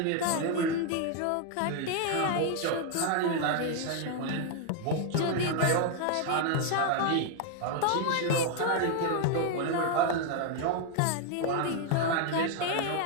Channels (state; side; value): different; both; correlation 0.00